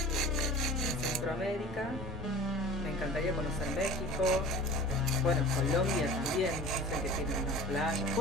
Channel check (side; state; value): both; normal; correlation 0.39